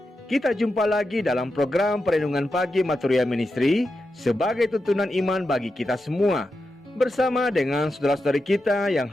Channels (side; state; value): both; normal; correlation 0.88